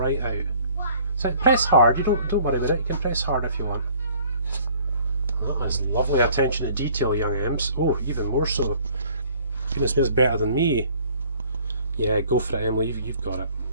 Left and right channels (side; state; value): both; inverted; correlation -0.55